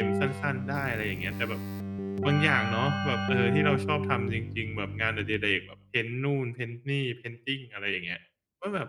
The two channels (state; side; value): identical; both; correlation 1.00